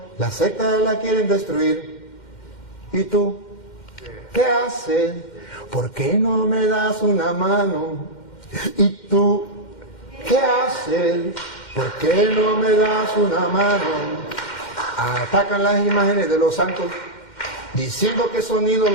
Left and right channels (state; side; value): late; right; 2.1 ms